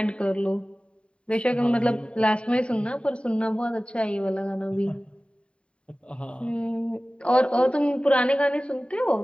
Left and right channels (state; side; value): late; right; 0.056 ms